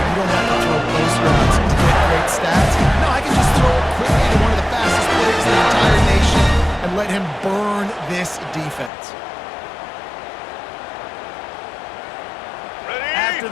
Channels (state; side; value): drops out; right; at 8.9 s